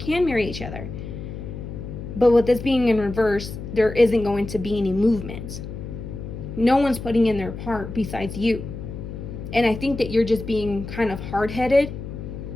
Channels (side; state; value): left; noise; hum, 9 dB below the sound